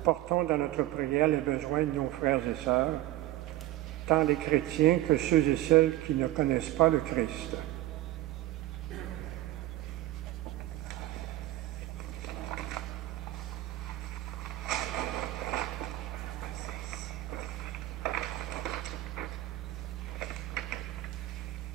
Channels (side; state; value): left; quieter; 15.6 dB